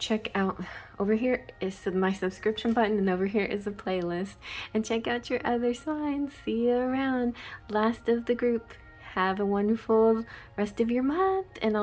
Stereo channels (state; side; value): identical; both; correlation 1.00